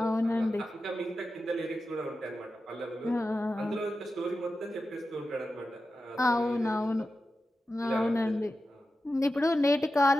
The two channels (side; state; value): both; normal; correlation 0.91